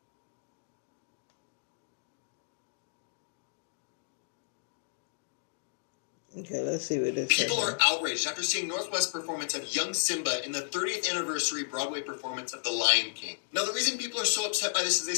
Okay, let's see what this is. People are outraged after seeing North West's performance of Young Simba in the 30th anniversary Broadway performance of The Lion King. Now, the reason people are so upset by this is they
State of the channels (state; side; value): silent; right; digital silence